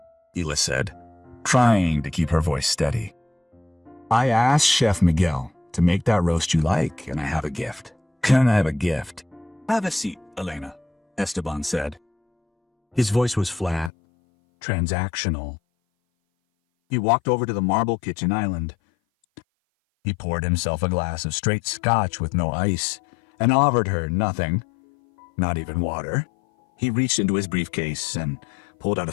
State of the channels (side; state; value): right; drops out; at 13.9 s